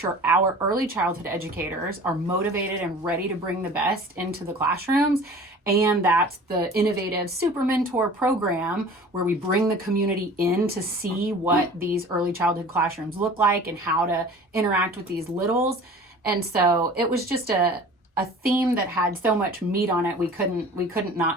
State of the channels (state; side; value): normal; both; correlation 0.43